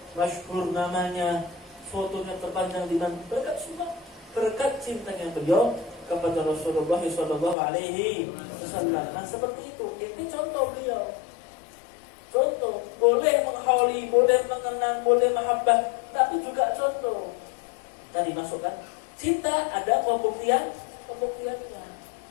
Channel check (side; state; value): right; drops out; at 7.6 s